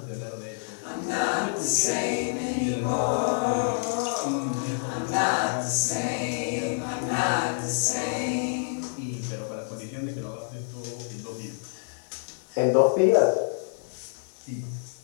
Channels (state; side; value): silent; right; 60 dB below the other